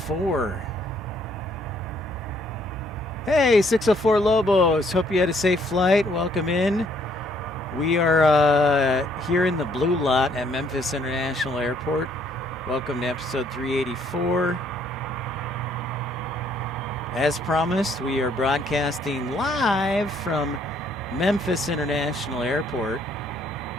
Hey, 604 Lobos. Hope you had a safe flight. Welcome in. We are here in the blue lot at Memphis International Airport. Welcome to episode 384. As promised, we are broadcasting live from Memphis International Airport.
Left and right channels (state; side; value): normal; both; correlation 0.66